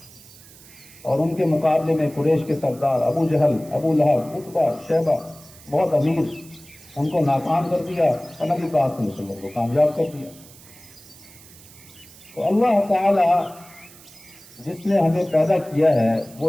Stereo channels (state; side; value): noise; right; hiss, 22 dB below the sound